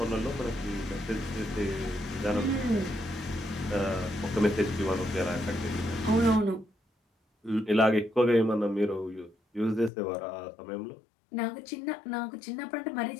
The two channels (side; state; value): right; drops out; at 9.9 s